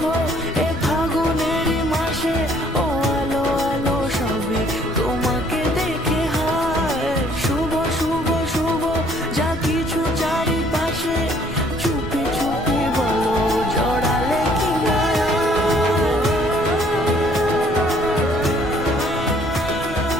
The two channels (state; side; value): noise; left; rumble, 12 dB below the sound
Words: এ ফাগুনেরই মাসে, ও আলো আলো সবে তোমাকে দেখে হায়। শুভ শুভ শুভ যা কিছু চারিপাশে, চুপি চুপি বলো জড়ালে কি না।